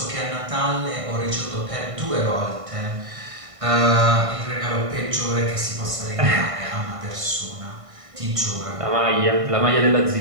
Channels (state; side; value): late; left; 1.5 ms